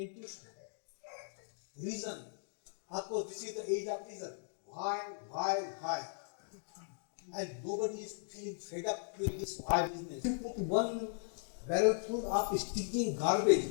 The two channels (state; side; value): silent; right; digital silence